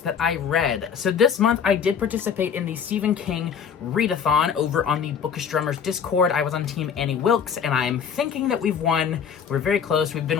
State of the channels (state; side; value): quieter; right; 7.2 dB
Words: I read. So this month, I did participate in the Stephen King readathon over on the Bookish Drummers Discord. I was on Team Annie Wilkes, and I'm thinking that we've won. We're very close. We've